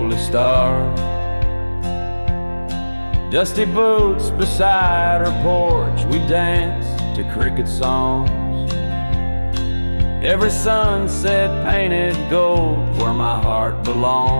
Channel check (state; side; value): inverted; both; correlation -1.00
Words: starved. Dusty boots beside her porch, we dance to cricket songs. Every sunset painted gold where my heart